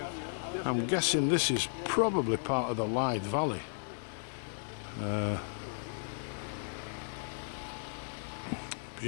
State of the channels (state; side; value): silent; right; digital silence